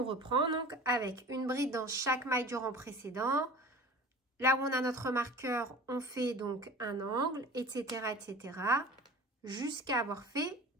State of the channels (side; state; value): both; normal; correlation 0.39